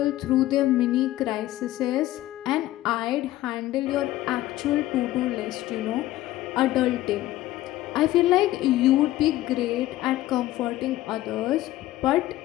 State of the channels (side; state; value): right; quieter; 15.5 dB